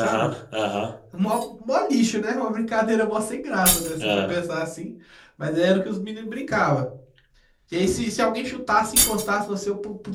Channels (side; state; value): both; identical; correlation 1.00